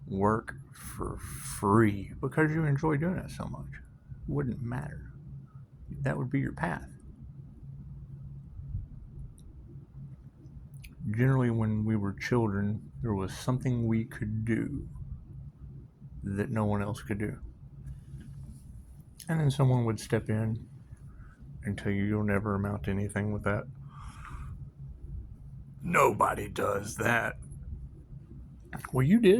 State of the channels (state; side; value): identical; both; correlation 1.00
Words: work for free because you enjoy doing it so much, it wouldn't matter. That would be your path. Generally, when we were children, there was something we could do that no one else could do. And then someone would step in and tell you you'll never amount to anything with that. Nobody does that. Well, you